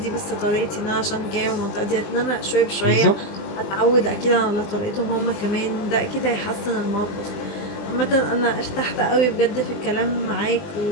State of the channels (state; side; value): late; right; 20 ms